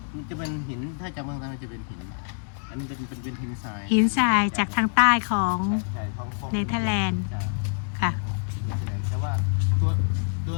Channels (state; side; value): silent; right; 61 dB below the other